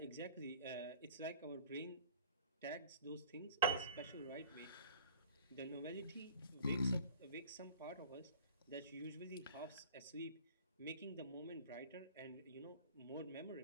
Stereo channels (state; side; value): inverted; both; correlation -0.45